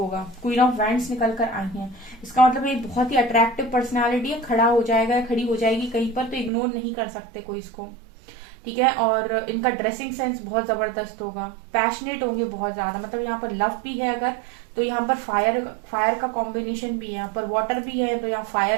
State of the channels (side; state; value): left; drops out; at 6.5 s